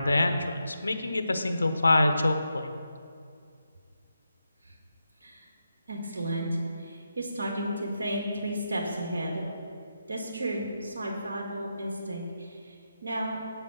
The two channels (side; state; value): both; inverted; correlation -0.85